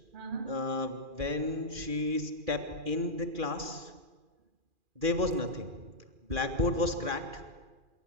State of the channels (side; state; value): left; late; 2.4 ms